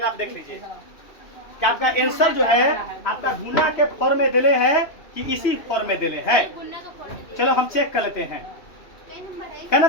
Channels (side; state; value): right; late; 2.8 ms